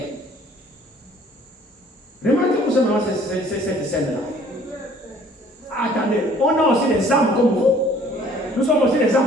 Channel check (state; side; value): normal; both; correlation 0.55